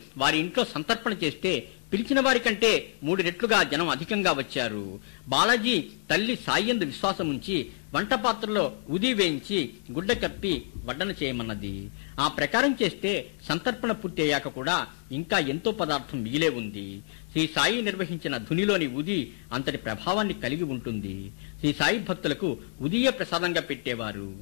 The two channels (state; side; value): silent; right; 59 dB below the other